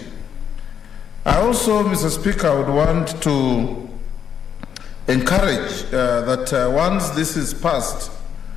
I also, Mr. Speaker, would want to encourage that once this is passed,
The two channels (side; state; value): right; quieter; 8.2 dB